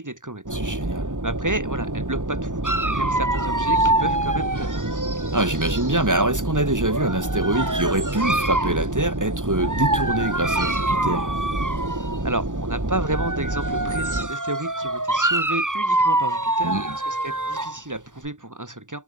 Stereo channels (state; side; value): late; left; 0.87 ms